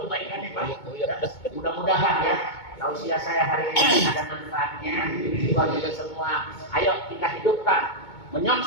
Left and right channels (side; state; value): right; late; 2.2 ms